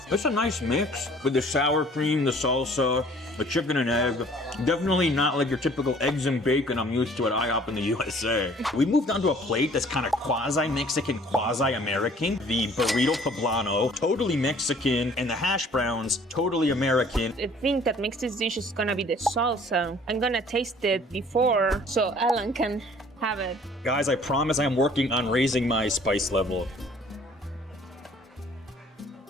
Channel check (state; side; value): normal; both; correlation 0.54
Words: It's a nice mix with the sour cream, the salsa, the chicken and egg. Definitely not like your typical eggs and bacon I'm used to at IHOP in the USA. We moved on to a plate that's kind of quasi-Mexican, quasi-American. The burrito poblano, totally Mexican, and the hash browns, totally American. The thing that makes this dish is gonna be the salsa. I'm gonna taste it before so Alan can have it. Guys, I promise I'm working on raising my spice level.